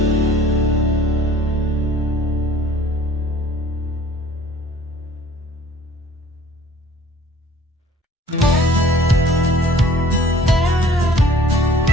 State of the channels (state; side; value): normal; both; correlation 0.52